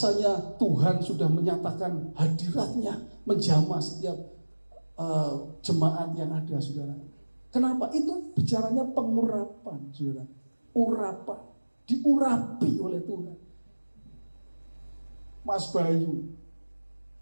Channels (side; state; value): both; inverted; correlation -1.00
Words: Tuhan sudah menyatakan hadiratnya menjamah setiap jemaat yang ada, saudara. Kenapa? Itu bicaranya pengurapan, saudara. Urapan, diurapi oleh Tuhan. Mas Bayu,